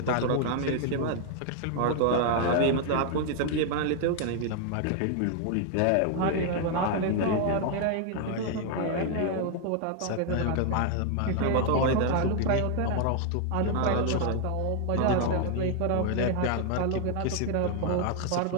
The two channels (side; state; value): both; different; correlation 0.00